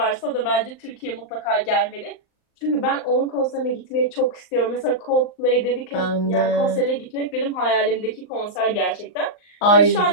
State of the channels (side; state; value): right; late; 39 ms